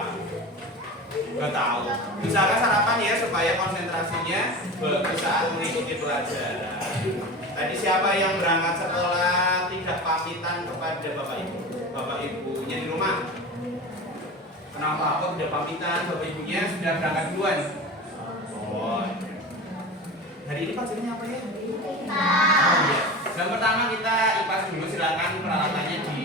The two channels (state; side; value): normal; both; correlation 0.30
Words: Gak tahu. Misalkan sarapan ya supaya konsentrasinya bagus saat mengikuti pelajaran. Tadi siapa yang berangkat sekolah tidak pamitan kepada bapak ibu? Bapak ibunya di rumah? Kenapa kok tidak pamitan? Bapak ibunya sudah berangkat duluan. Oh. Hari ini pelajarannya apa ya? Oh, iya. Yang pertama kita IPAS dulu, silakan peralatannya